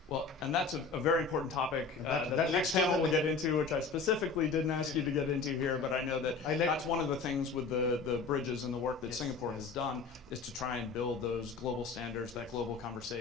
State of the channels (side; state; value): right; quieter; 4.6 dB